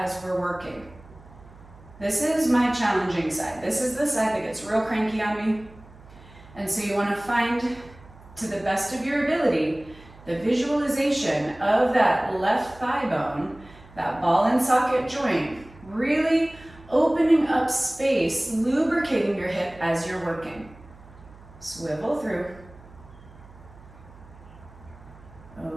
we're working. This is my challenging side. This is the side that gets real cranky on me. And so you wanna find, to the best of your ability, the visualization of that left thigh bone, that ball and socket joint, really opening up space, lubricating your hip as you're working. Swivel through.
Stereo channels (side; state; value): right; noise; hum, 22 dB below the sound